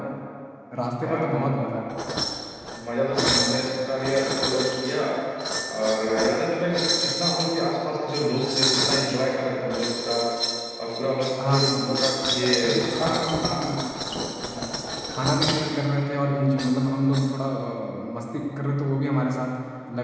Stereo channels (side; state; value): both; identical; correlation 1.00